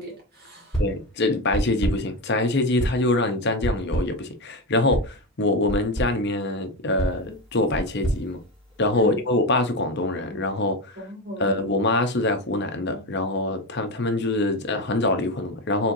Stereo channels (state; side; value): normal; both; correlation 0.17